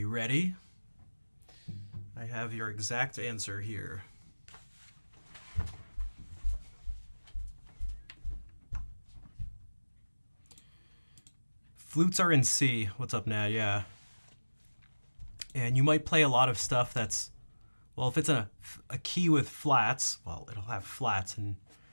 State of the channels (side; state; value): both; inverted; correlation -1.00